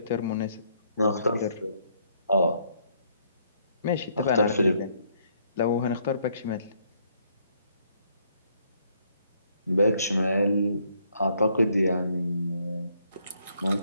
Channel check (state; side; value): inverted; both; correlation -0.69